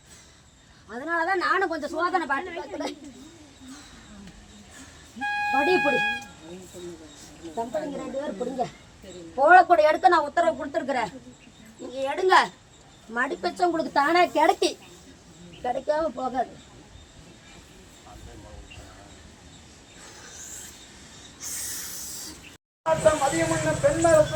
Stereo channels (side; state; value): both; identical; correlation 1.00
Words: அதனாலதான் நானும் கொஞ்சம் சோதனை பாட்டு பார்க்கிறேன். படி பிடி தம்பதிங்க 2 பேரும் பிடிங்க. போலக்கூட எடுக்க நான் உத்தரவு கொடுத்துருக்குறேன். நீங்க எடுங்க. மடிப்பச்சம் உங்களுக்கு தானே கிடைக்காம போகாது. மதியம்